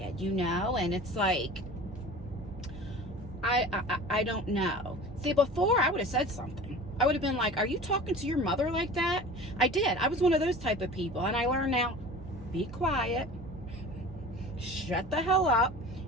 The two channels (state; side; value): noise; right; hum, 17 dB below the sound